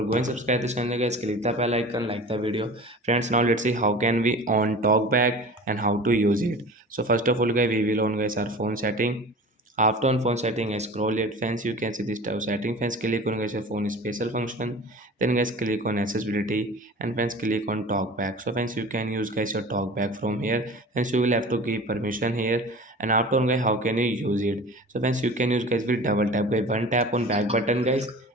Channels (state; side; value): normal; both; correlation 0.38